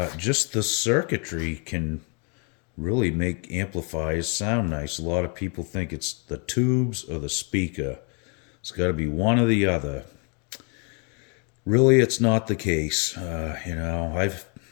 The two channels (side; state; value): right; quieter; 35.9 dB